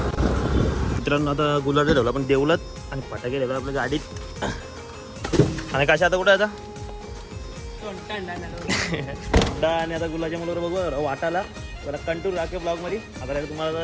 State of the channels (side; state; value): both; identical; correlation 1.00